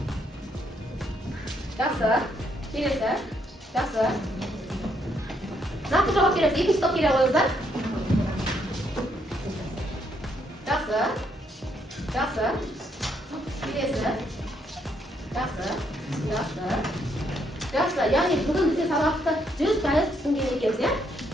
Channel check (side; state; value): both; normal; correlation 0.73